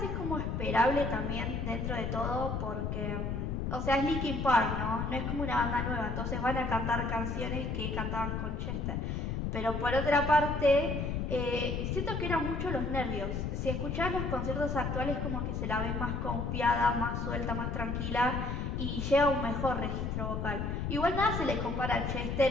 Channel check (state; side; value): noise; left; rumble, 2 dB below the sound